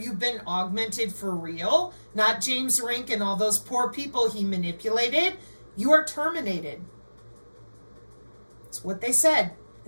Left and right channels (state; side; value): inverted; both; correlation -1.00